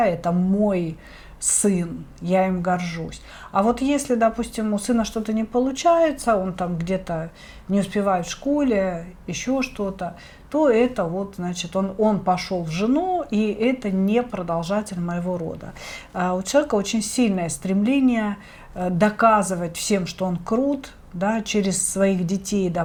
это мой сын, я им горжусь. А вот если, допустим, у сына что-то не получается, он там где-то не успевает в школе, еще что-то, то это вот, значит, он пошел в жену, и это не продолжатель моего рода. У человека очень сильное стремление доказывать всем, что он крут, да, через своих детей,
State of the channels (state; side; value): identical; both; correlation 1.00